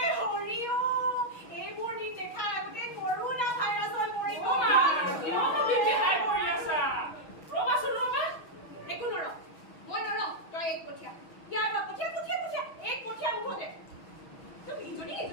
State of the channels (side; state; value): right; late; 6.3 ms